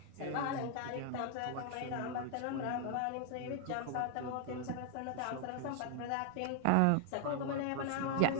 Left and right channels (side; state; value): both; different; correlation 0.00